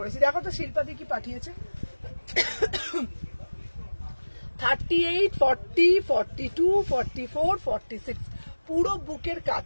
দেখো তো শিল্পাদি কি পাঠিয়েছে। 38, 40, 42, 44, 46 পুরো বুকের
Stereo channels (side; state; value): both; inverted; correlation -1.00